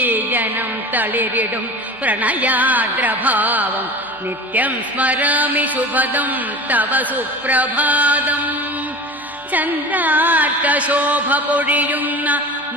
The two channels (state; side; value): normal; both; correlation 0.35